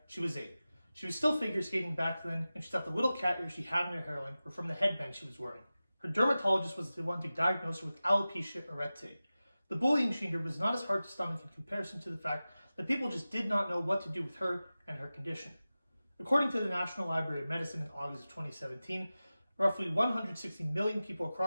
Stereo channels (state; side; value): inverted; both; correlation -0.96